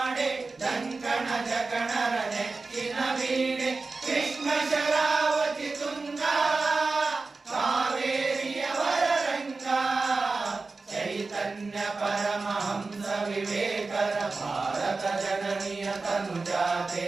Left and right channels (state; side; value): quieter; left; 3.8 dB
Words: ದಂಕಣ ಜಕಣರ ನೆಕ್ಕಿನ ವೀಣೆ ಕೃಷ್ಣ ಶರಾವತಿ ತುಂಗ ಕಾವೇರಿಯವರ ರಂಗ ಚೈತನ್ಯ ಪರಮಹಂಸ ವಿವೇಕರ ಭಾರತ ಜನನಿಯ